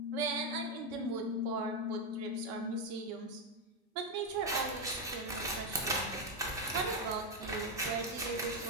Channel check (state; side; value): normal; both; correlation 0.05